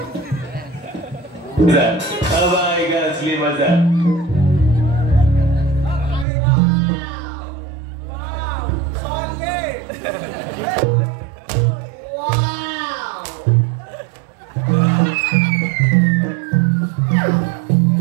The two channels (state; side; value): drops out; left; at 6.2 s